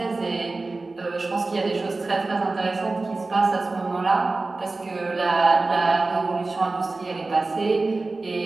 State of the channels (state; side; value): quieter; left; 3.4 dB